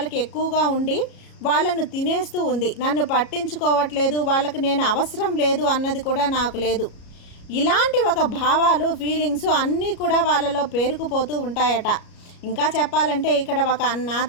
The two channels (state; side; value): late; right; 34 ms